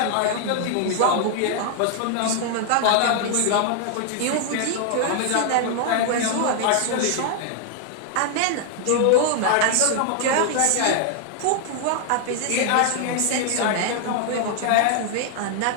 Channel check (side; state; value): both; different; correlation 0.00